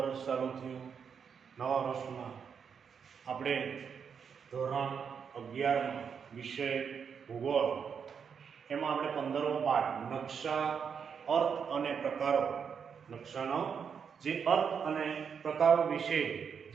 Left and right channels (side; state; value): left; quieter; 6.8 dB